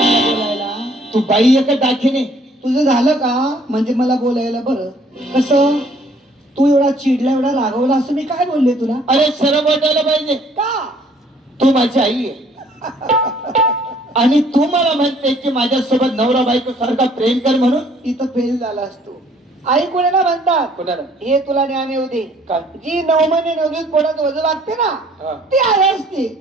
बोलायला? तू बाई एक दाखिने. तुझं झालं का म्हणजे मला बोलायला बरं. कसं तू एवढा चिडला एवढा रागवला असं मी काय बोलले तुला? अरे शरम वाटायला पाहिजे. का? तू माझी आई आहे आणि तू मला म्हणते की माझ्यासोबत नवरा बायको सारखा प्रेम कर म्हणून. इथं फेल झाला असतो. आई कोणाला म्हणतात? कोणाला? हे तुला ज्ञान येऊ दे. काय? जी 9 महिने 9 दिवस पोटात वजन लागते ना हा. ती आई असते.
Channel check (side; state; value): both; normal; correlation 0.60